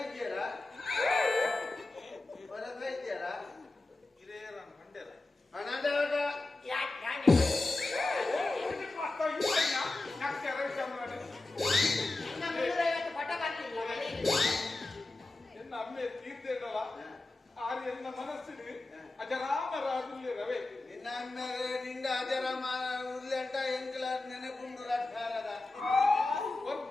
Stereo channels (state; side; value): quieter; right; 3.0 dB